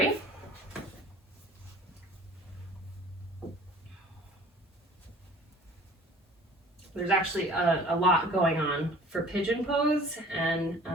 There's actually a lot going on for pigeon pose, and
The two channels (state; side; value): normal; both; correlation 0.49